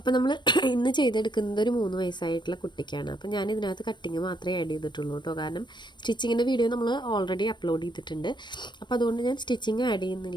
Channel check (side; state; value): right; late; 0.22 ms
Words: നമ്മൾ ഇന്ന് ചെയ്തെടുക്കുന്നത് ഒരു 3 വയസ്സായിട്ടുള്ള കുട്ടിക്കാണ്. അപ്പോൾ ഞാൻ ഇതിനകത്ത് കട്ടിങ് മാത്രമേ ആഡ് ചെയ്തിട്ടുള്ളൂ കേട്ടോ. കാരണം സ്റ്റിച്ചിങ്ങിൻ്റെ വീഡിയോ നമ്മൾ ഓൾറെഡി അപ്ലോഡ് ചെയ്തിട്ടുണ്ട്. അപ്പോൾ അതുകൊണ്ട് ഞാൻ സ്റ്റിച്ചിങ് ആഡ്